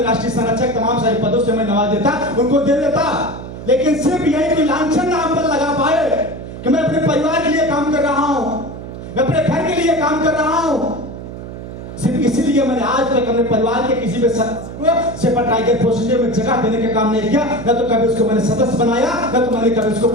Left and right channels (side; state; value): right; noise; hum, 11 dB below the sound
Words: राष्ट्रीय संरक्षक तमाम सारे पदों से मैं नवाज देता, उनको दे देता। लेकिन सिर्फ यही कोई लांछन नाम पर लगा पाए कि मैं अपने परिवार के लिए काम कर रहा हूं, मैं अपने घर के लिए काम कर रहा हूं, सिर्फ इसीलिए मैंने आज तक अपने परिवार के किसी भी सदस्य को सेपा टाइगर प्रोसीजर में जगह देने का काम नहीं किया। न तो कभी उसको मैंने सदस्य बनाया, न तो मैंने कभी उसको